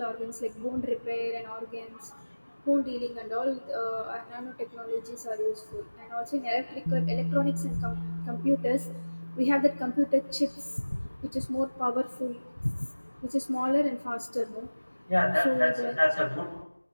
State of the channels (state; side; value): inverted; both; correlation -1.00